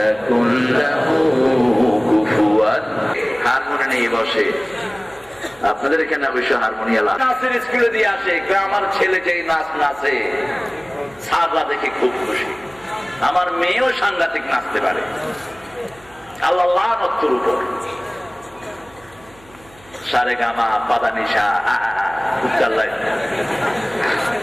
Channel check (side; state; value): right; noise; hum, 26 dB below the sound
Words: লাহু কুফুয়ান। হারমোনি নিয়ে বসে, আপনাদের এখানে অবশ্য হারমোনিয়াম নাচের স্কুলে দিয়ে আসে। আমার ছেলে যেই নাচ নাচে সাররা দেখে খুব খুশি। আমার মেয়েও সাংঘাতিক নাচতে পারে। আল্লাহ লানতের উপর। সারে গামা পাদানিশা